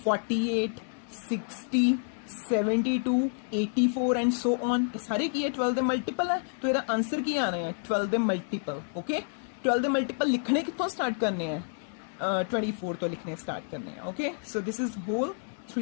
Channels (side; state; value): right; silent; 58 dB below the other